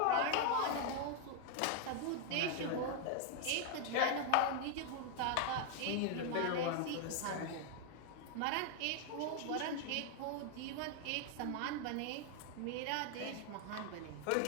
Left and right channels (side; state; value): both; different; correlation 0.00